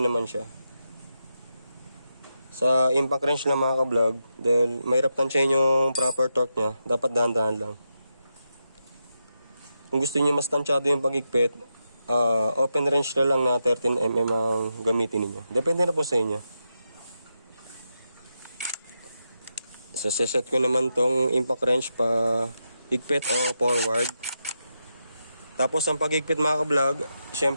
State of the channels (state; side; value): inverted; both; correlation -0.86